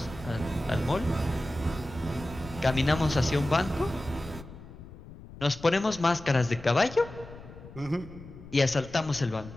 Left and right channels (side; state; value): left; noise; rumble, 16 dB below the sound